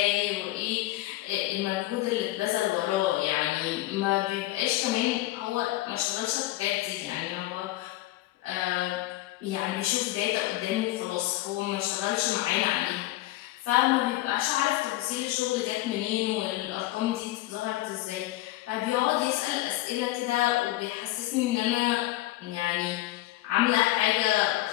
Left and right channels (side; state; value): right; quieter; 17.0 dB